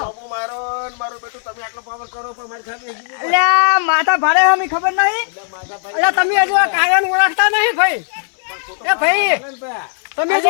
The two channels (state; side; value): silent; right; digital silence